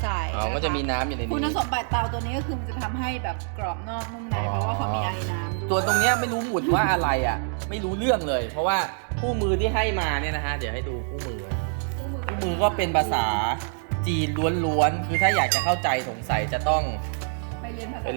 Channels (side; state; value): left; silent; 61 dB below the other